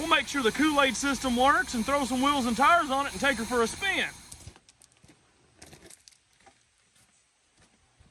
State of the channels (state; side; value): identical; both; correlation 1.00